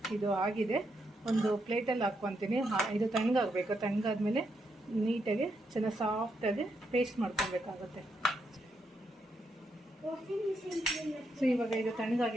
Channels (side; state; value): both; normal; correlation 0.80